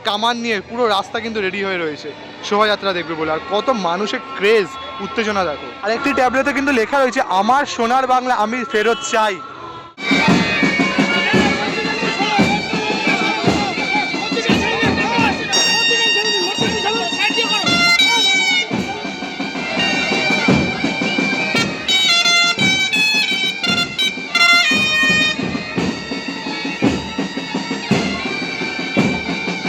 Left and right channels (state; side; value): identical; both; correlation 1.00